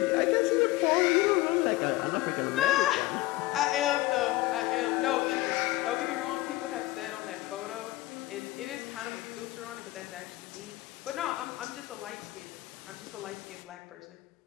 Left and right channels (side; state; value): right; quieter; 18.4 dB